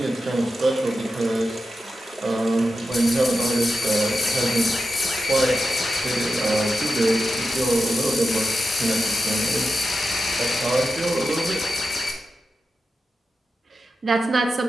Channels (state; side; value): normal; both; correlation 0.90